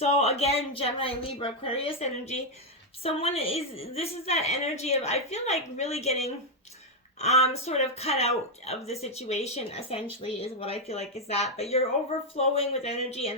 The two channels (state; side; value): normal; both; correlation 0.02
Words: again, Gemini, Libra, Aquarius energy. This is that energy of, I feel like, really getting sort of cut out of the situation, essentially, is what I feel like is that. But you're overflowing with energy